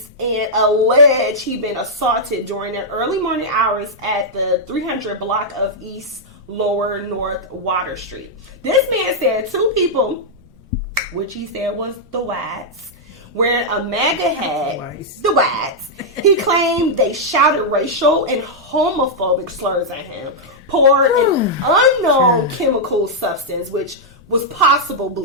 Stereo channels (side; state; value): both; normal; correlation -0.06